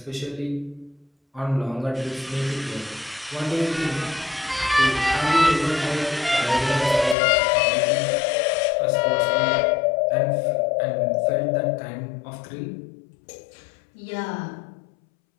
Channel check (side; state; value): right; drops out; at 7.2 s